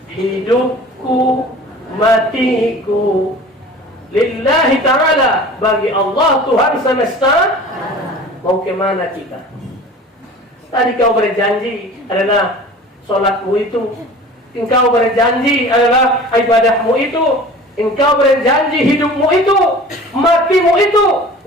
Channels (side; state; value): both; normal; correlation 0.41